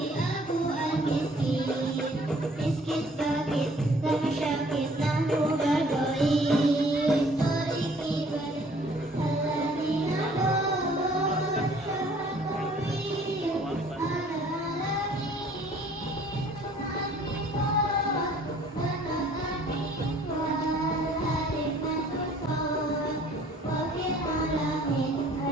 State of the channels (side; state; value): both; normal; correlation 0.56